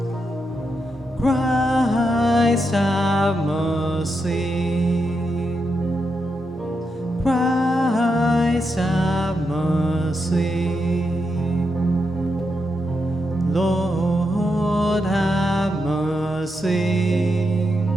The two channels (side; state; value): both; normal; correlation 0.84